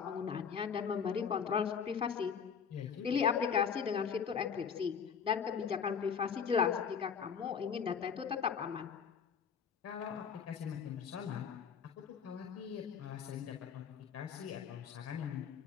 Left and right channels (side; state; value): right; quieter; 6.8 dB